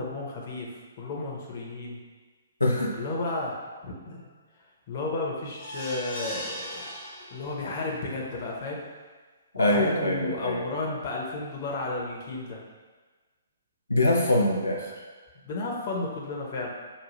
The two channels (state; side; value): inverted; both; correlation -0.57